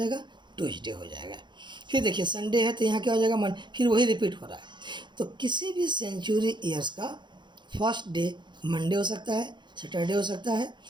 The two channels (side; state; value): left; late; 0.22 ms